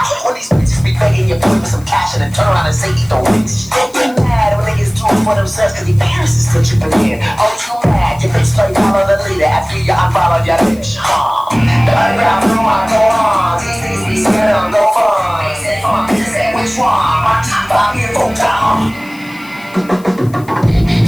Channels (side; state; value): left; noise; hiss, 24 dB below the sound